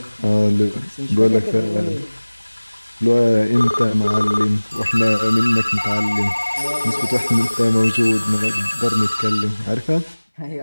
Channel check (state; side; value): inverted; both; correlation -1.00